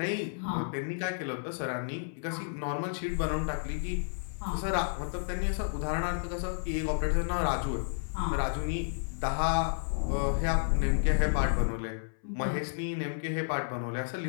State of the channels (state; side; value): silent; right; 57 dB below the other